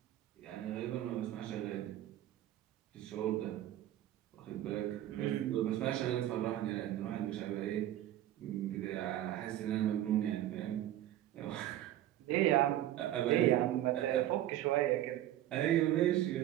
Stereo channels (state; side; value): quieter; left; 13.1 dB